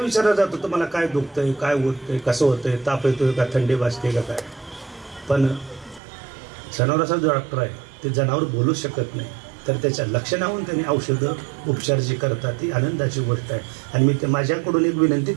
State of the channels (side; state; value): left; drops out; at 6.0 s